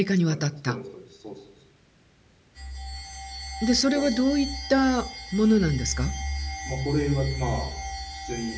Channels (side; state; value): both; identical; correlation 1.00